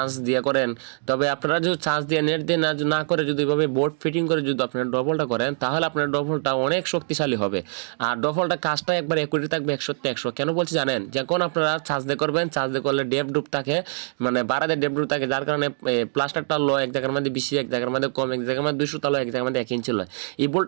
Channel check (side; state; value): left; silent; 58 dB below the other